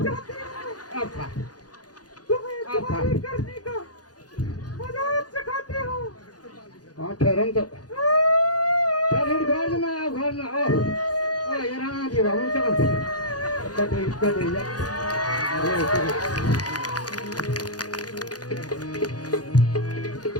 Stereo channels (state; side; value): late; right; 0.68 ms